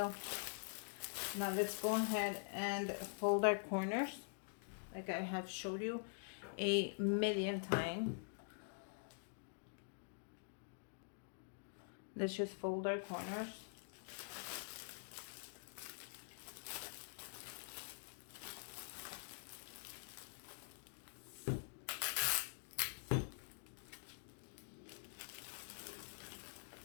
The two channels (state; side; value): silent; right; digital silence